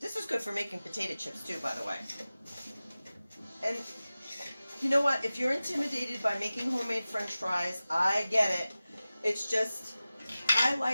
is good for making potato chips too, by the way. And You know what? If you're intimidated by making homemade French fries, I get it. It's just, I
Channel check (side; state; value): both; inverted; correlation -0.96